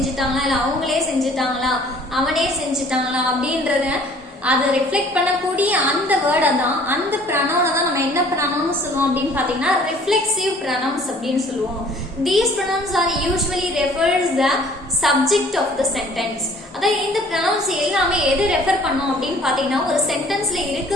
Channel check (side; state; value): both; normal; correlation 0.54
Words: இல்ல அவங்களே செஞ்சுட்டாங்களா அவனே செஞ்சுட்டாங்களா அப்படின்றத அதை ரிஃப்ளெக்ட் பண்ணக்கூடிய அந்த வேர்டை தான் அந்த ப்ரனவுனை தான் நம்ம என்ன ப்ரனவுன் சொல்லுவோம் அப்படின்னு பார்த்தீங்கன்னா ரிஃப்ளெக்சிவ் ப்ரனவுன்ஸ் அப்படின்னு சொல்லுவோம். These pronouns are usually refers the subject of the sentence. அதாவது இந்த ப்ரனவுன்ஸ் எல்லாமே எது ரெஃபர் பண்ணோம் அப்படின்னு பார்த்தீங்கன்னா ஒரு சென்டென்ஸ்ல